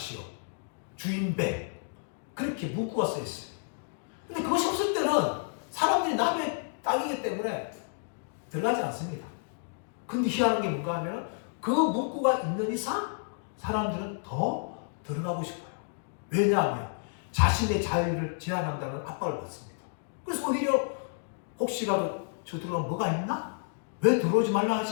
주인배 그렇게 문구가 써 있어요. 근데 그것이 없을 때는 사람들이 남의 땅이기 때문에 들어가지 않습니다. 근데 희한한 게 뭔가 하면 그 문구가 있는 이상 사람들은 더 들어가고 싶어요. 왜냐하면 자신의 자유를 제한한다는 압박을 받습니다. 그래서 오히려 혹시라도 저 들어가면 뭐가 있나? 왜 들어오지 말라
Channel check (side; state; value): right; silent; digital silence